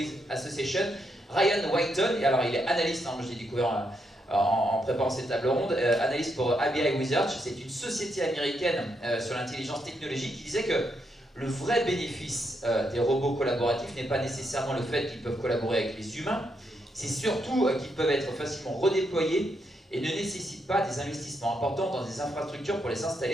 Association, Ryan Whiteton, et alors il est analyste, moi je l'ai découvert en préparant cette table ronde, analyste pour ABI Research, c'est une société américaine sur l'intelligence technologique, qui disait que le vrai bénéfice des robots collaboratifs n'est pas nécessairement le fait qu'ils peuvent collaborer avec les humains, c'est surtout qu'ils peuvent être facilement redéployés et ne nécessitent pas des investissements importants dans des infrastructures pour les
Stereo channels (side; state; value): both; normal; correlation 0.79